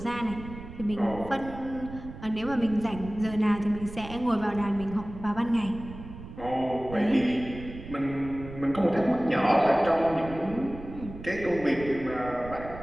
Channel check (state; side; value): noise; right; rumble, 13 dB below the sound